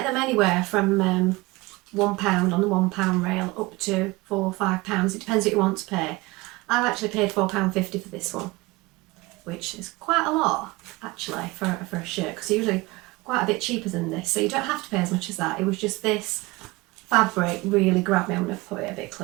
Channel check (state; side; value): quieter; left; 22.2 dB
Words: them anywhere from £1 on the £1 rail up to £4 or £5. It depends what you want to pay. I've actually paid £4.50 for this one, which is quite a lot actually for a shirt, because usually quite a bit cheaper than this. So you don't have to pay as much as that. It was just this fabric really grabbed me. I'm going to put it a bit